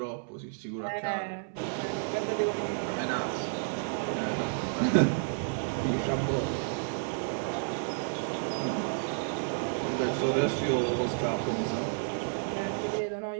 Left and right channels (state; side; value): silent; left; 57 dB below the other